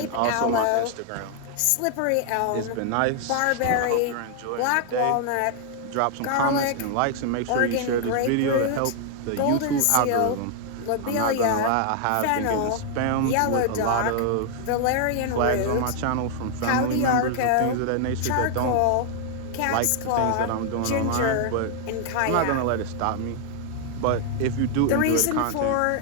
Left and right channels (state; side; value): different; both; correlation 0.00